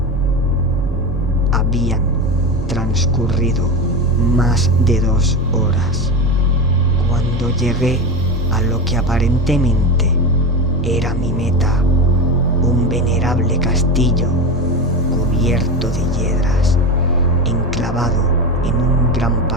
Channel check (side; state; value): both; normal; correlation 0.21